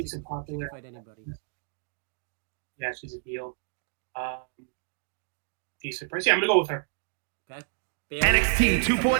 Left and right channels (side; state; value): left; silent; digital silence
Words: she a can popular. fight anybody. Yeah, she's a heel. Decent price. Yeah, I'm gonna go with her. Okay. Bailey. NXT